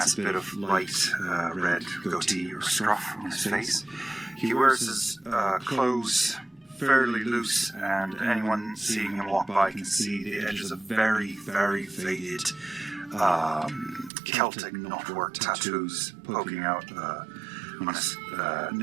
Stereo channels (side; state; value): left; drops out; at 14.1 s